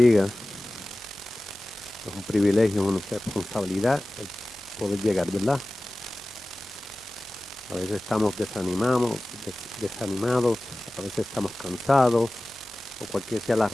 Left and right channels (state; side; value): normal; both; correlation 0.97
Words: Es un privilegio, una responsabilidad el poder llegar, ¿verdad? A veces estamos desanimados, a veces estamos cansados, o cualquier sea la